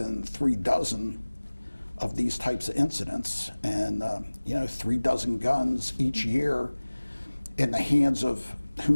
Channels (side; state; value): both; inverted; correlation -1.00